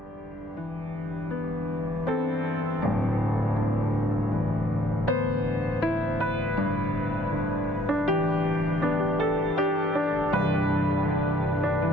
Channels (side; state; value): both; normal; correlation 0.60